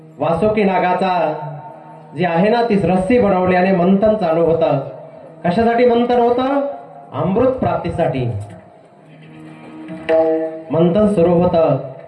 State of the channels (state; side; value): identical; both; correlation 1.00